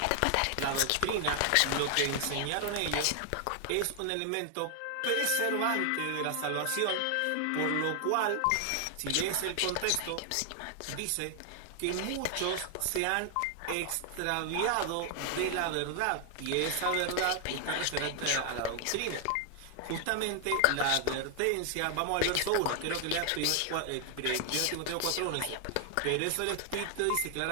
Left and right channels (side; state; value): both; different; correlation 0.00